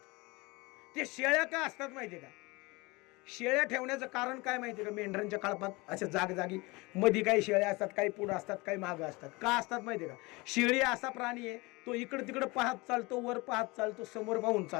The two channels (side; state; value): right; quieter; 24.4 dB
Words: ते शेळ्या का असतात माहितीये का, शेळ्या ठेवण्याचं कारण काय माहितीये का, मेंढरांच्या कळपात अशा जागी मध्ये काही शेळ्या असतात, काही पुढं असतात, काही मागं असतात. का असतात माहितीये का, शेळी असा प्राणी आहे, तो इकडे तिकडे पाहत चालतो, वर पाहत चालतो, समोर पाहून